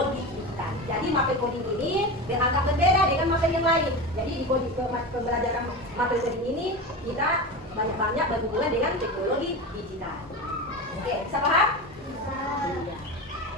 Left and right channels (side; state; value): both; normal; correlation 0.24